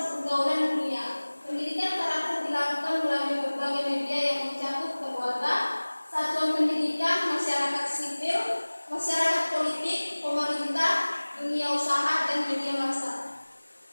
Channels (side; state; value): both; inverted; correlation -1.00